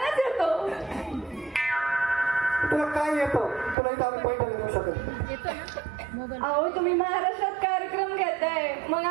येतो. तुला काय येतं? तुला इथं आम्ही पैठणी देऊ शकतो. अहो तुम्ही महाराष्ट्रात कार्यक्रम घेताय, मग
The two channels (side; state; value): left; drops out; at 3.8 s